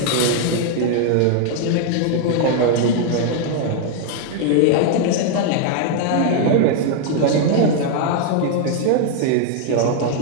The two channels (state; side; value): different; both; correlation 0.00